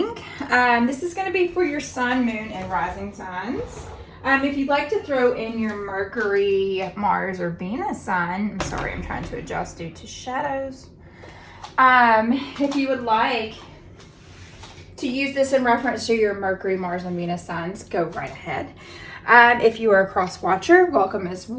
This is going to be for your sun, moon, and rising signs. If you'd like to throw in your Mercury, Mars, or Venus sign, I'm sorry, I'm trying to adjust due to shadows. If you would like to use this in reference to your Mercury, Mars, and Venus signs, go right ahead. If you are a cross watcher, welcome as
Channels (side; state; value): both; identical; correlation 1.00